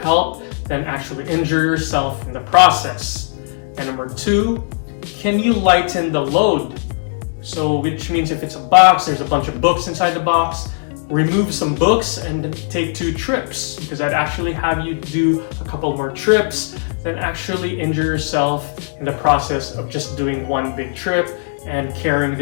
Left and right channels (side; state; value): right; silent; digital silence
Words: than actually injure yourself in the process. And number two, can you lighten the load? So which means if it's a box, there's a bunch of books inside the box, remove some books and take 2 trips, because I'd actually have you do a couple more trips than actually injure yourself in the process of just doing one big trip and carrying